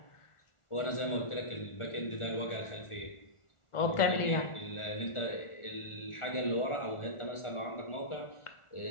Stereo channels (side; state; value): right; late; 1.4 ms